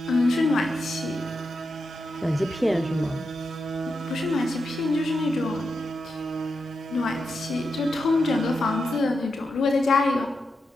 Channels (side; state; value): both; normal; correlation 0.87